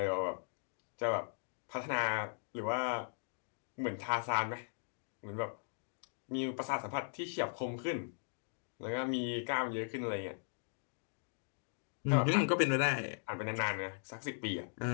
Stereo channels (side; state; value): right; silent; digital silence